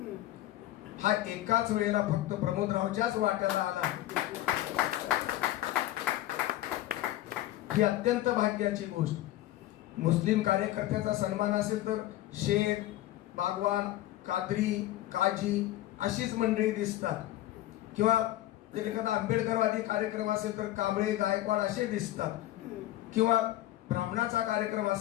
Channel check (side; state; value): right; quieter; 14.8 dB